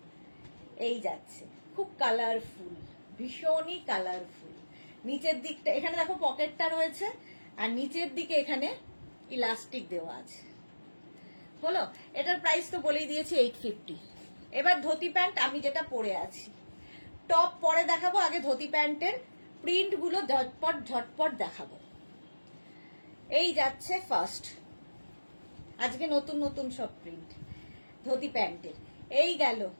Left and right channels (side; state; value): both; inverted; correlation -1.00